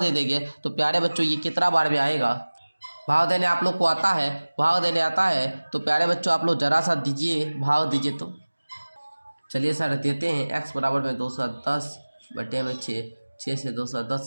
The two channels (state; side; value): inverted; both; correlation -1.00